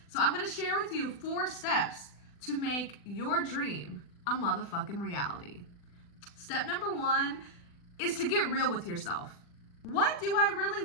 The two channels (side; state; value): right; late; 40 ms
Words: So I'm gonna share with you 4 steps to make your dream a motherfucking reality. Step number 1 is to get real with yourself. What do I